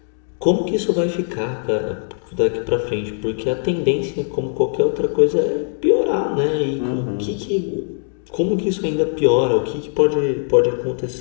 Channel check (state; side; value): silent; right; 66 dB below the other